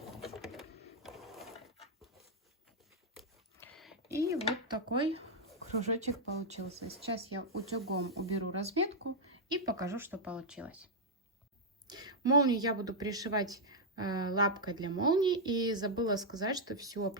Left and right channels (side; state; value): both; normal; correlation -0.04